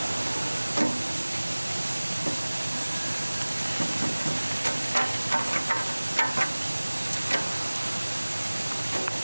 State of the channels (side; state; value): both; inverted; correlation -1.00